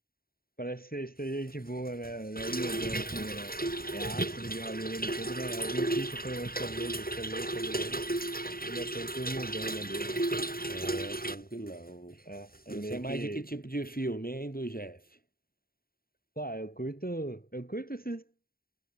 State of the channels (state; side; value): late; right; 0.43 ms